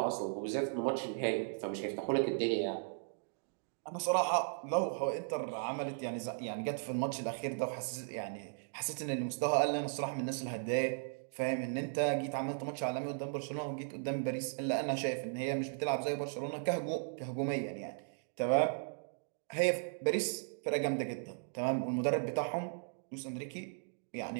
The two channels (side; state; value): left; silent; digital silence